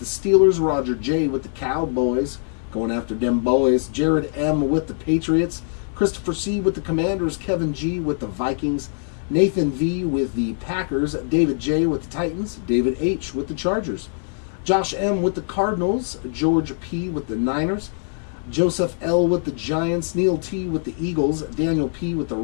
Steelers, Roger J with the Cowboys, going after them boys, Jared M with the Patriots, Christopher C with the Commanders, Kevin G with the Vikings, Nathan V with the Packers, David J with the Titans, David H with the Chargers, Josh M with the Cardinals, George P with the Niners, Joseph L with the Giants, Neil T with the Eagles, Daniel P with the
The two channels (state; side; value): silent; right; digital silence